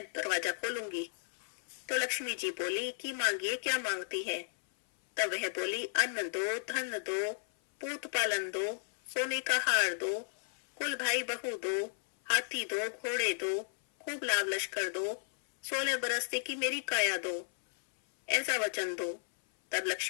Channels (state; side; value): silent; right; 55 dB below the other